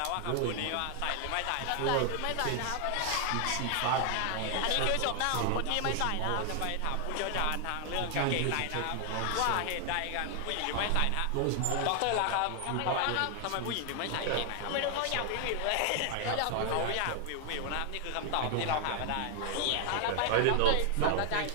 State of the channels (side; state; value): both; different; correlation 0.00